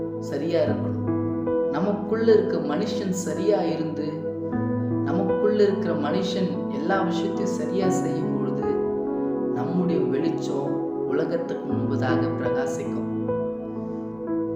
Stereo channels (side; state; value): both; identical; correlation 1.00